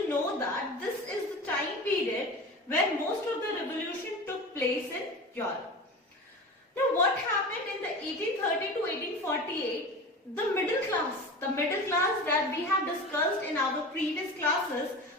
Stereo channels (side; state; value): both; normal; correlation 0.32